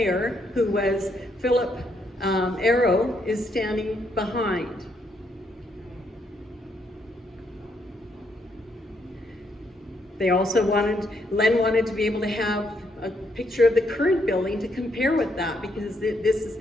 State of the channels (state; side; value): normal; both; correlation 0.75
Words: who was Philip Arrow, is standing behind. They also Len wanted to be able to have a picture of the current building to compare with that, because